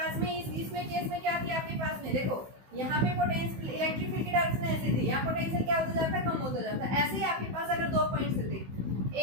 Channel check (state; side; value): late; left; 16 ms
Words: में इसमें केस में क्या थी, आपके पास में देखो यहाँ पे पोटेंशियल इलेक्ट्रिक फील्ड की डायरेक्शन ऐसी थी, यहाँ पोटेंशियल क्या होता जाता है, कम होता जाता है। ऐसे ही आपके पास अगर 2 पॉइंट्स थे